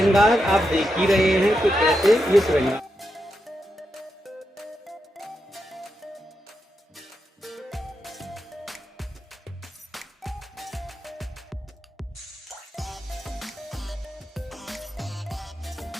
आप देख ही रहे हैं कि कैसे ये श्रृंगार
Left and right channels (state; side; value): normal; both; correlation 0.86